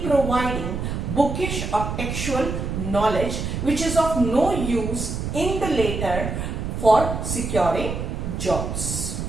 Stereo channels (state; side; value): noise; right; rumble, 4 dB below the sound